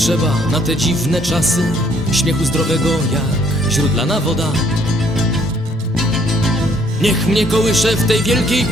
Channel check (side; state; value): both; normal; correlation 0.64